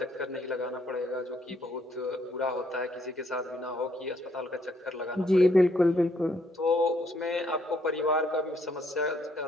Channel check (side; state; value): both; normal; correlation 0.70